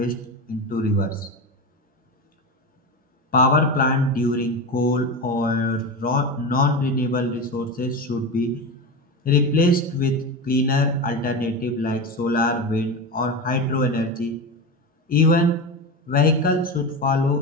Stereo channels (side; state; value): both; normal; correlation 0.21